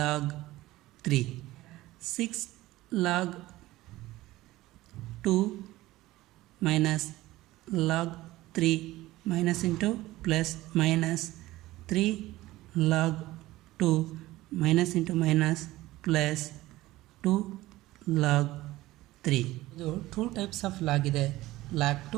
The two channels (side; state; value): left; quieter; 17.4 dB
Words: 3. 6 log 2 minus log 3 minus into plus minus 3 log 2 minus into minus plus 2 log 3. ಇದು 2 ಟೈಪ್ಸ್ ಆಫ್ ಲಾಗ್ ಇದೆ, log